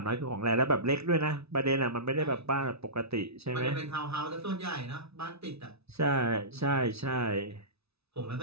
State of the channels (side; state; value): left; late; 0.79 ms